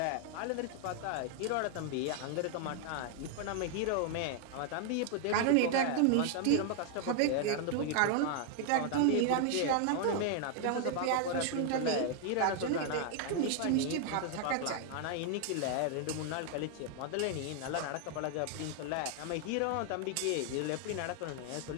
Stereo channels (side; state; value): both; different; correlation 0.00